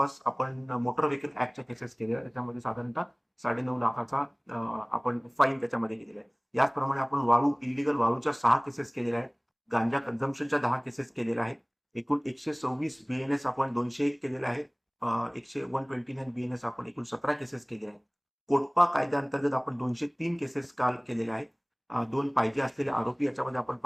आपण मोटर व्हेकल ऍक्टच्या केसेस केलेल्या आहेत. त्याच्यामध्ये साधारणतः 9.5 लाखाचा आपण फाईन त्याच्यामध्ये केलेला आहे. याचप्रमाणे आपण वाळू इलिगल वाळूच्या 6 केसेस केलेल्या आहेत. गांजा कन्झम्पशनच्या 10 केसेस केलेल्या आहेत. एकूण 126 बीएनएस आपण 201 केलेले आहेत. 129 बीएनएस आपण एकूण 17 केसेस केलेल्या आहेत. कोटपा कायद्याअंतर्गत आपण 203 केसेस काल केलेल्या आहेत. 2 पाहिजे असलेले आरोपी याच्यामध्ये आपण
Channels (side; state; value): both; identical; correlation 1.00